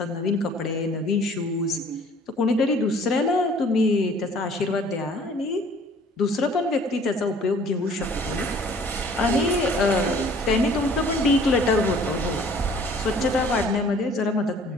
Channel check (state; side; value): normal; both; correlation 0.53